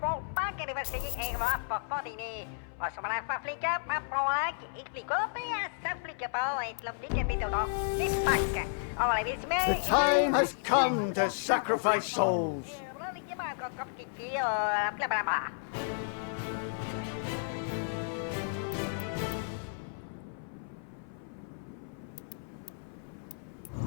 Park University and Rock for 40. Or some of the flick up, for like, it flick up, and flick up, and love the bit of this back. All I wish me. The time has come to sacrifice souls.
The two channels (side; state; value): right; silent; 56 dB below the other